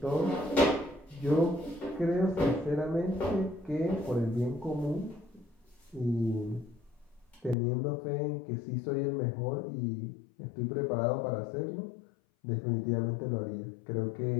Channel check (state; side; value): drops out; right; at 7.6 s